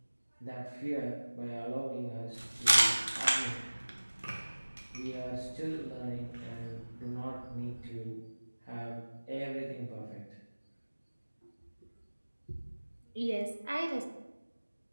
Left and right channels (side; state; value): both; inverted; correlation -1.00